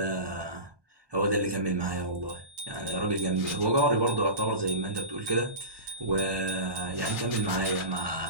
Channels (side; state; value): left; late; 1.2 ms